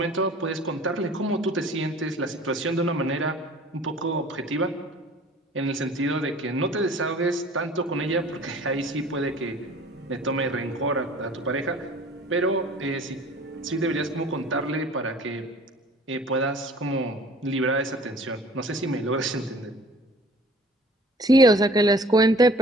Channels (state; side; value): normal; both; correlation 0.49